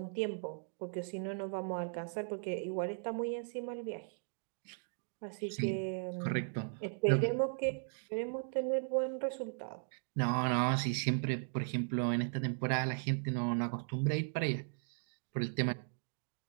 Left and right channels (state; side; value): silent; left; digital silence